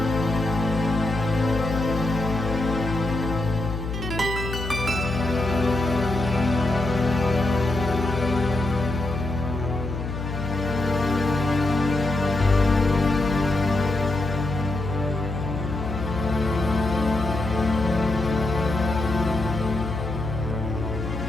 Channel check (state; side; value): noise; left; hum, 6 dB below the sound